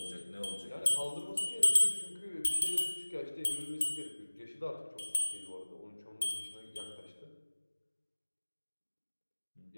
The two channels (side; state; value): both; inverted; correlation -1.00